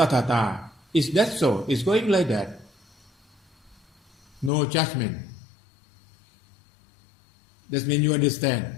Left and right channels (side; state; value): right; drops out; at 4.5 s